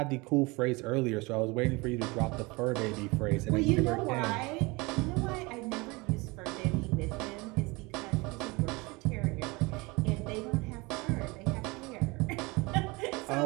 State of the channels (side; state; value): left; quieter; 25.0 dB